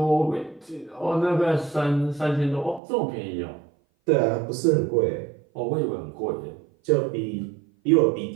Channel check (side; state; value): left; drops out; at 2.8 s